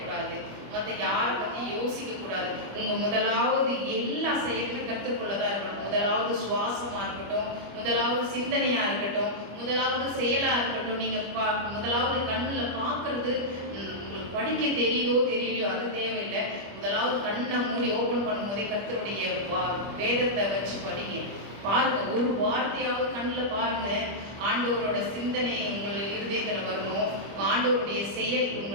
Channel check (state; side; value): late; left; 25 ms